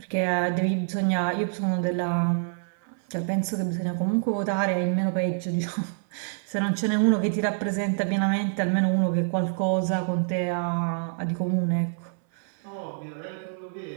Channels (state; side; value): silent; left; 61 dB below the other